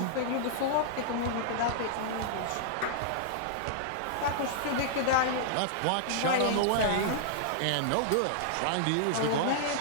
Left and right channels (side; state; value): both; different; correlation -0.01